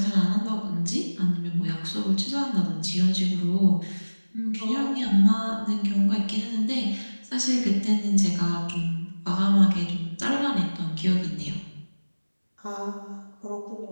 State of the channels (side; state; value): both; inverted; correlation -1.00